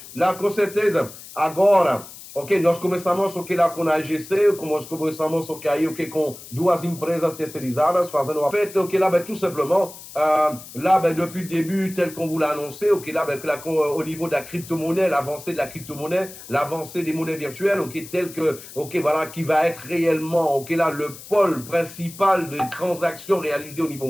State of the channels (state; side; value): noise; left; hiss, 16 dB below the sound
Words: La com certeza, agora, ok, nós começamos ok, lá com a AGC, nós começamos ok, aí, ok, com 2 empresas terceirizadas, fazendo a fête, ok, là, ben, tout simplement, là, ben, depuis le début, tel qu'on vous l'a annoncé, ok, là, ben, au niveau de la crypto-monnaie, l'avancée de la crypto-monnaie, l'avancée des monnaies virtuelles, ok, tel que, ok, voilà, qui va être réellement, ok, là, le pôle principal de transactions réalisées au niveau